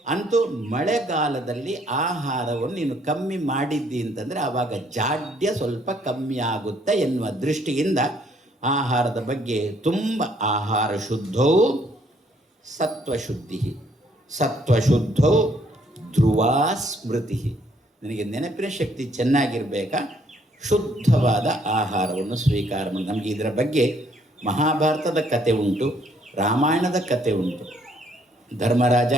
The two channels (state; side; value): normal; both; correlation 0.66